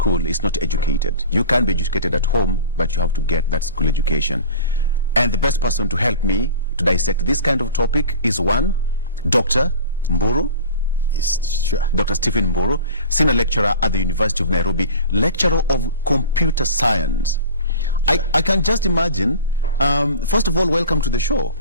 is not educated. You can be educated at home, but you have to get that school education. And the best person to help me to dissect this kind of topic is one, Dr. Mburu. Yes, sure. Dr. Stephen Mburu, senior lecturer at the University of Nairobi, lecturer of computer science. Sure. I can just imagine, first of all, welcome to the show.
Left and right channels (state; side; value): inverted; both; correlation -0.38